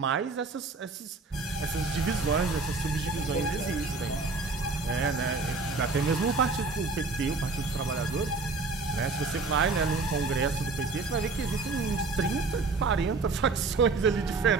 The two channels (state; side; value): quieter; left; 4.0 dB